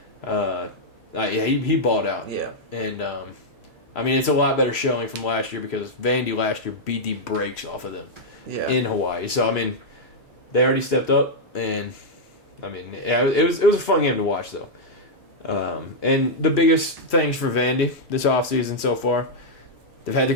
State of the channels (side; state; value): both; normal; correlation -0.05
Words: He balled out. Yeah. And I mean, it's a lot better showing from last year because Vandy last year beat the brakes off of them in Hawaii. So I mean, they already stepped up, and I mean, yeah, it was a fun game to watch though. And the biggest things for Vandy this offseason so far, they've had the